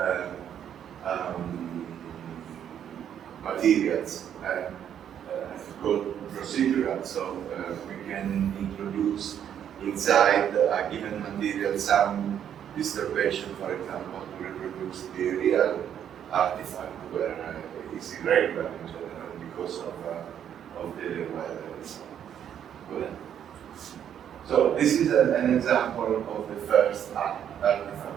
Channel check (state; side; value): quieter; left; 9.4 dB